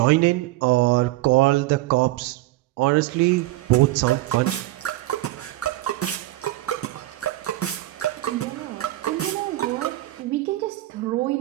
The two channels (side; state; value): left; quieter; 17.0 dB